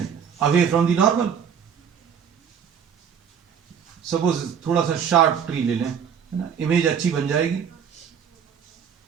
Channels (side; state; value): left; quieter; 7.5 dB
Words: away from the normal. Suppose थोड़ा सा शार्प ट्री ले लें, है ना, इमेज अच्छी बन जाएगी।